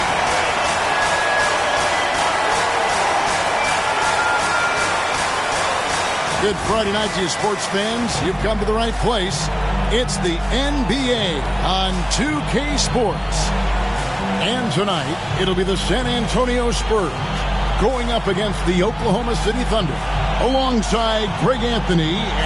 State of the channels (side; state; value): both; identical; correlation 1.00